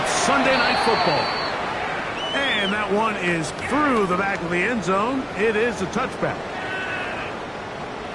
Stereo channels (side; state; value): both; identical; correlation 1.00